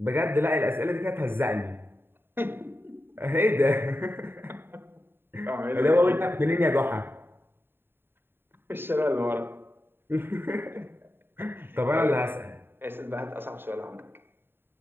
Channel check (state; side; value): late; left; 0.11 ms